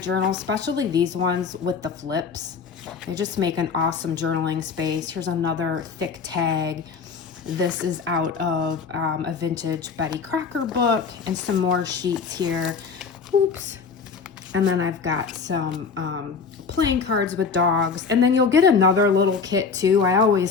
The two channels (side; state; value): right; quieter; 5.5 dB